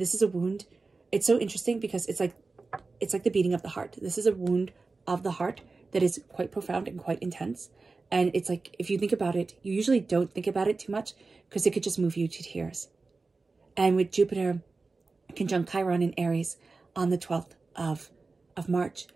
is a wound. It's so interesting because it's like the beating of the heart. This is a wound of the heart that is quite profound and quite intense. And it's like, if you think about it, you usually don't think about it too much because it could just move you to tears. And with Jupiter conjunct Chiron in Aries on the 12th of March,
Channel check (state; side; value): quieter; left; 3.9 dB